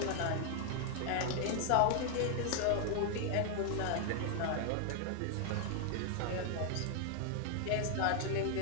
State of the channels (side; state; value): both; different; correlation 0.00